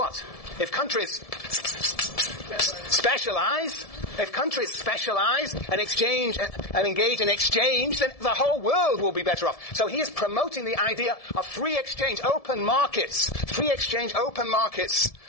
If countries specialize and exchange and engage in exchange, then the whole world will be better off. So he is promoting the idea of free exchange, open markets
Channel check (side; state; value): right; late; 1.7 ms